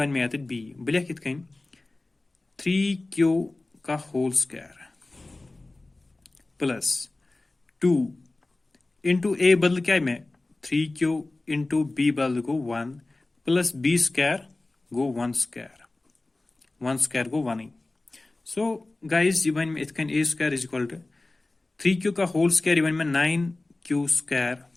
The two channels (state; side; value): quieter; right; 3.0 dB